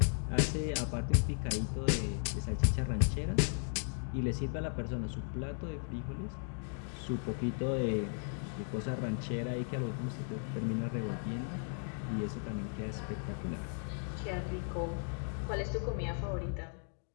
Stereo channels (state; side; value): silent; right; 54 dB below the other